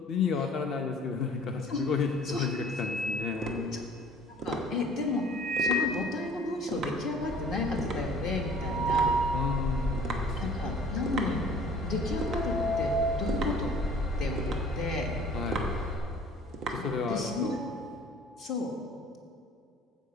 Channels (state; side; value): normal; both; correlation 0.51